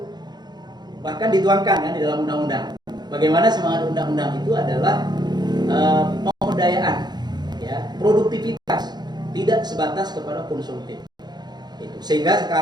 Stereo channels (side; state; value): left; late; 0.20 ms